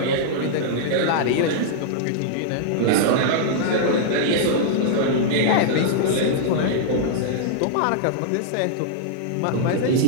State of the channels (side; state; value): both; different; correlation -0.02